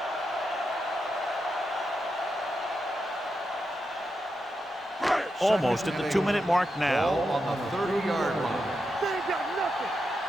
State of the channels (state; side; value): normal; both; correlation 0.87